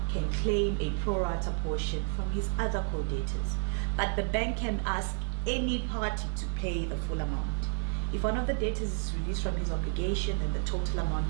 can claim a pro rata portion from his other co-debtors. But the bank can ask any party to pay the full amount. If one of the debtors is released from his obligation, then the total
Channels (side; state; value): left; silent; 56 dB below the other